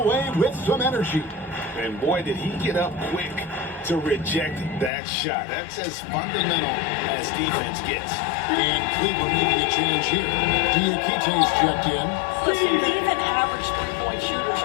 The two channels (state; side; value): drops out; right; at 4.9 s